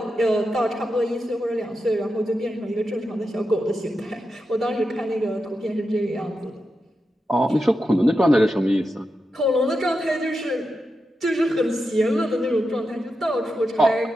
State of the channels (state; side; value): normal; both; correlation 0.88